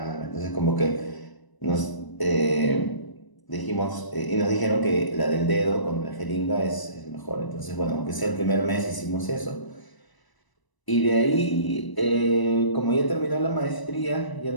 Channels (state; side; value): late; right; 1.0 ms